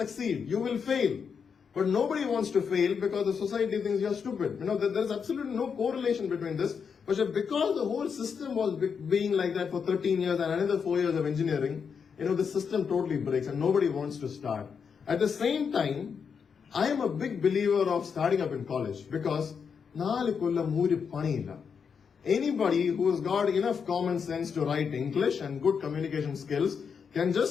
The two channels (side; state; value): right; quieter; 6.4 dB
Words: You will fail. But nobody wants to fail because the society thinks you're stupid. There's absolutely no correlation between this. But because the whole system was being like that for 13 years and another 4 years of engineering, the system totally breaks and nobody wants to start. At the same time, I am a big believer of starting up in college because anybody who has got enough common sense to write English and good communication skills can